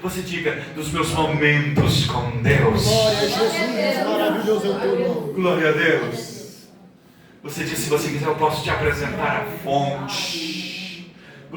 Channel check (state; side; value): identical; both; correlation 1.00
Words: Você diga, dos meus momentos com Deus. Glória a Jesus, maravilhoso é o teu nome. Glória a Deus. Você diz, se você quiser eu posso te apresentar a fonte.